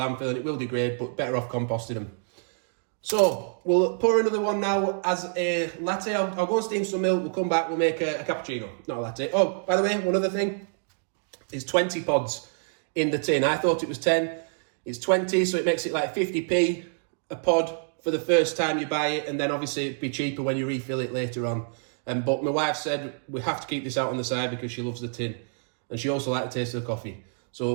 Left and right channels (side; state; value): left; silent; digital silence